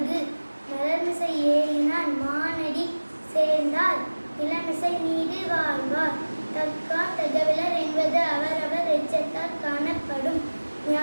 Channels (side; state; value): both; inverted; correlation -1.00